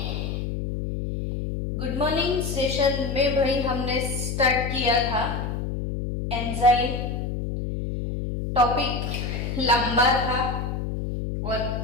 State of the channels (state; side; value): noise; left; hum, 3 dB below the sound